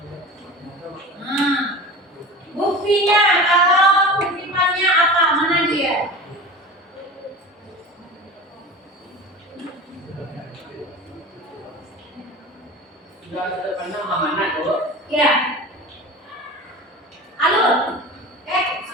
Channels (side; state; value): both; normal; correlation 0.33